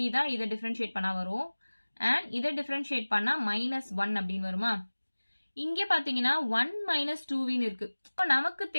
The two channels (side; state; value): both; inverted; correlation -1.00